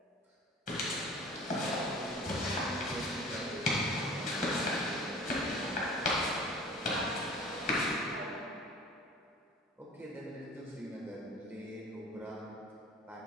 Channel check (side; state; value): both; normal; correlation 0.44